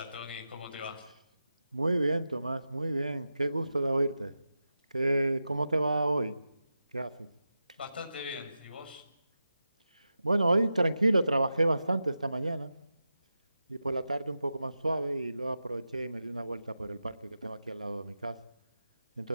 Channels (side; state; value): both; inverted; correlation -0.91